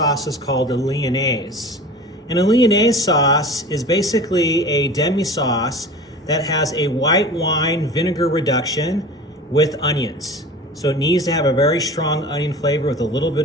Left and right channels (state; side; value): normal; both; correlation 0.37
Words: is called a Lyonnaise. And a Lyonnaise sauce is basically a demi-sauce that has a white wine vinegar reduction with onions. So it needs to have a very strong onion flavor with a little bit